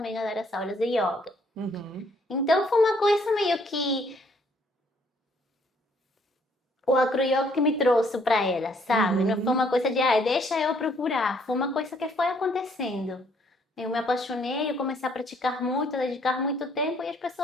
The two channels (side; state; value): both; normal; correlation 0.65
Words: a dar as aulas de yoga. Então foi uma coisa meio que o acro-yoga que me trouxe para ela, sabe? Não foi uma coisa de, deixa eu procurar. Foi uma coisa que foi acontecendo. Eu me apaixonei, eu comecei a praticar muito, a dedicar muito tempo e as